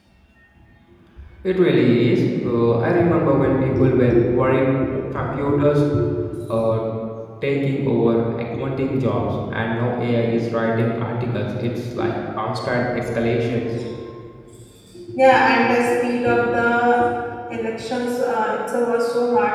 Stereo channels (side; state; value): both; identical; correlation 1.00